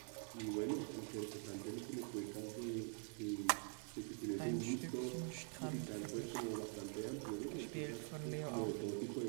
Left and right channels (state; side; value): quieter; left; 38.5 dB